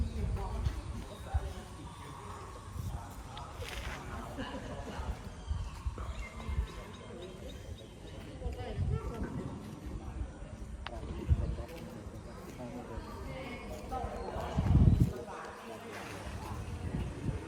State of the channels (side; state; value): both; identical; correlation 1.00